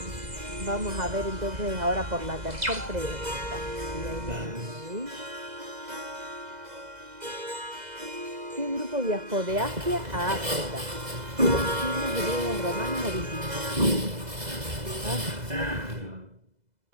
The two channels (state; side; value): late; left; 2.0 ms